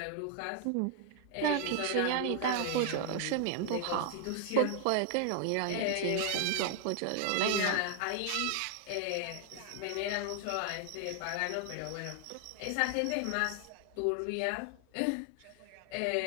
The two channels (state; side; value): different; both; correlation 0.00